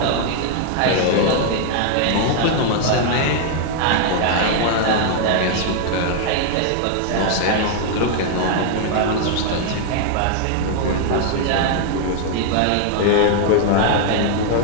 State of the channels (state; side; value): different; both; correlation 0.00